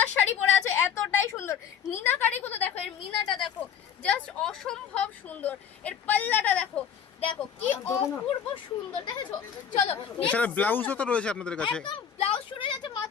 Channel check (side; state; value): right; quieter; 8.1 dB